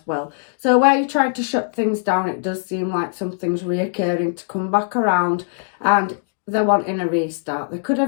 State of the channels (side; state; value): right; silent; digital silence